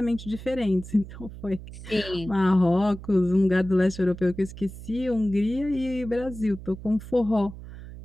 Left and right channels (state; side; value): noise; right; hum, 13 dB below the sound